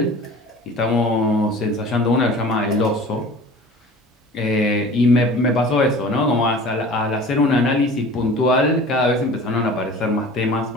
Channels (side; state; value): both; normal; correlation 0.42